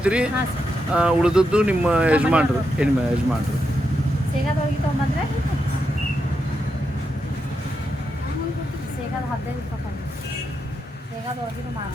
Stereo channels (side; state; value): both; normal; correlation 0.84